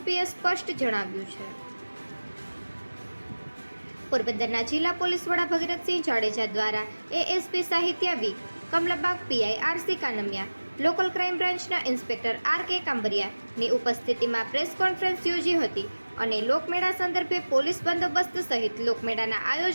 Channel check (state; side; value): inverted; both; correlation -1.00